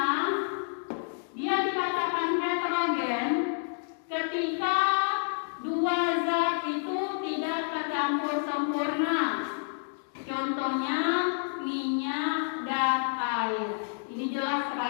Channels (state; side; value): silent; right; digital silence